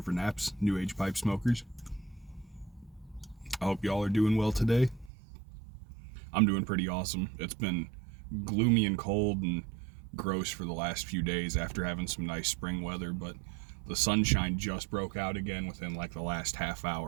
Naps, New Age Pipe Smokers. I hope y'all are doing well today. I'm doing pretty awesome. It's been gloomy and cold and gross for the last few days after having some nice spring weather, but the sunshine just broke out again within like the last half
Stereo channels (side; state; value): left; drops out; at 5.1 s